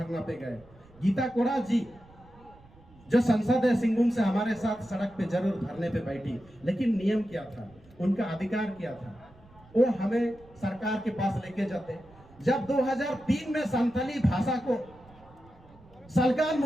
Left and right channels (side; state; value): right; noise; rumble, 25 dB below the sound